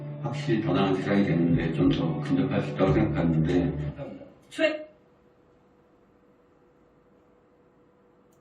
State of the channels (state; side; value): identical; both; correlation 1.00